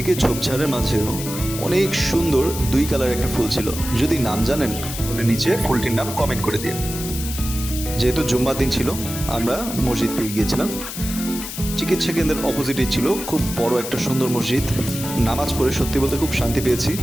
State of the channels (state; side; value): noise; left; hiss, 8 dB below the sound